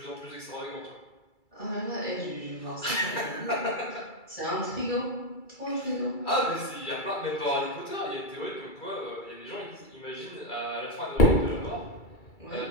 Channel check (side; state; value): right; late; 2.3 ms